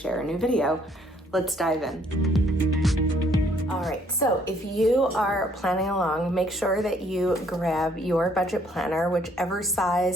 a new video. Let's dive in. All right, so if you are planning along, make sure that you grab your budget planner, whichever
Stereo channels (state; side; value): normal; both; correlation 0.64